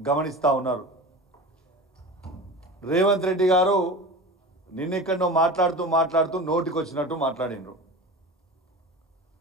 ఉన్నారు. రేవంత్ రెడ్డి గారు నిన్నెక్కడో మాట్లాడుతూ నోటికి వచ్చినట్టు మాట్లాడిండ్రు.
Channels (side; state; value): both; normal; correlation 0.32